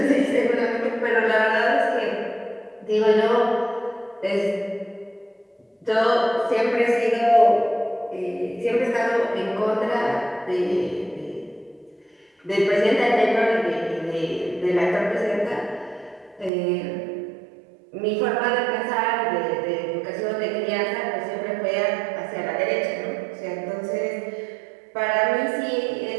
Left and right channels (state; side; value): drops out; left; at 16.5 s